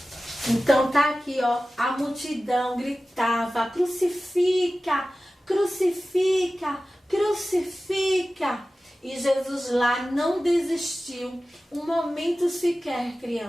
Então tá aqui, ó, a multidão gritava: crucifica, crucifica, crucifica. E Jesus lá não desistiu um momento sequer,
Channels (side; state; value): both; normal; correlation 0.96